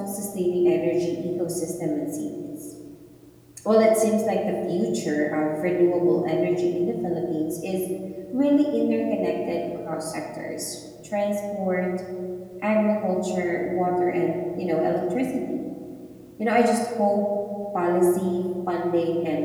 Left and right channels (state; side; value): identical; both; correlation 1.00